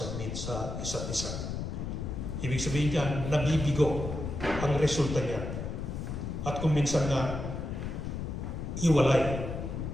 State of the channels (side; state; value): left; noise; rumble, 4 dB below the sound